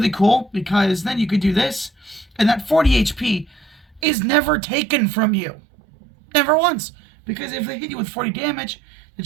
cool, because then you could do this, and that 40 HP is never taken from you. Never once. Because if they hit you with 40 damage, they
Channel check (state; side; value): drops out; left; at 4.0 s